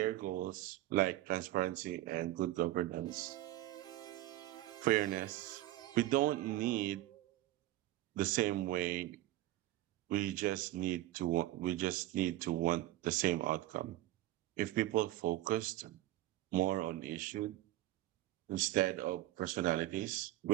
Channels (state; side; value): quieter; left; 15.5 dB